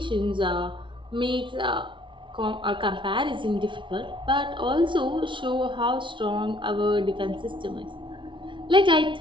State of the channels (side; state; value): left; late; 0.24 ms